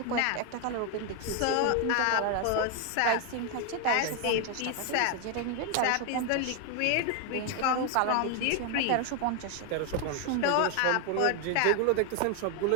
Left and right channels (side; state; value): both; different; correlation 0.01